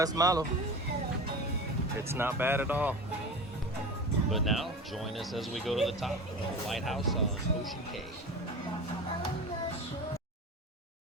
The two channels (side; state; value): both; normal; correlation 0.31